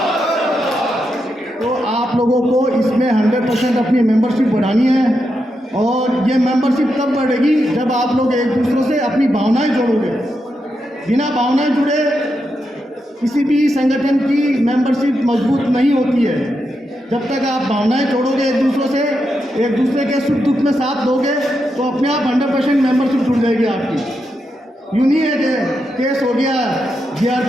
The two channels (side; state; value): both; normal; correlation 0.85